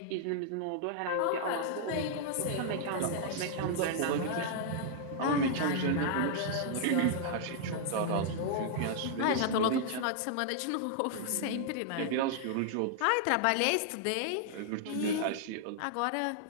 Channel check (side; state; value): both; different; correlation -0.01